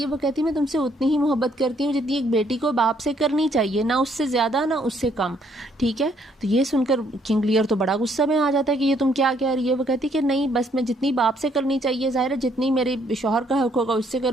वो कहती है मैं तुमसे उतनी ही मोहब्बत करती हूँ जितनी एक बेटी को बाप से करनी चाहिए, ना उससे ज़्यादा ना उससे कम, ठीक है। तो ये सुनकर किंग लियर तो बड़ा गुस्सा में आ जाता है कि ये तुम क्या कह रही है। वो कहती है कि नहीं, बस मैं जितनी बाप से करनी चाहिए, ज़ाहिर है जितनी मेरे शौहर का हक होगा उससे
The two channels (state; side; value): normal; both; correlation 0.68